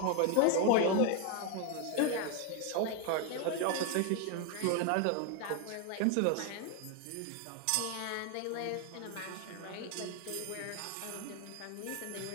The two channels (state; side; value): different; both; correlation 0.01